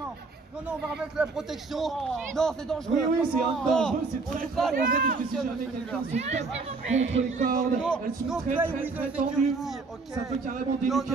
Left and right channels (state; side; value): quieter; left; 4.0 dB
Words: Non, non, on va remettre la protection. Non, c'est dangereux. Oui, oui, c'est un dangereux, c'est on très joue très pas dangereux avec parce que si les jamais quelqu'un se tape non. contre les cordes, Non, elles sont non très play très with très the tendues. security, ok. Ça peut carrément